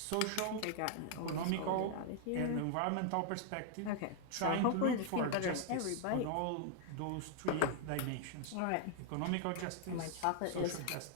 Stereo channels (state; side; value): different; both; correlation 0.00